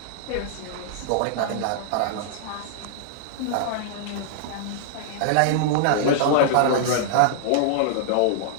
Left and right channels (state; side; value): different; both; correlation -0.02